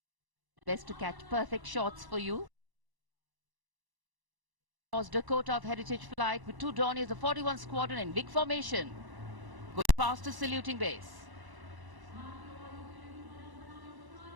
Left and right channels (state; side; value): late; left; 1.0 ms